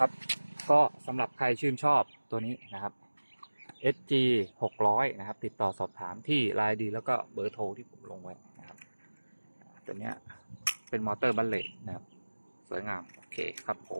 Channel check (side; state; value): both; inverted; correlation -1.00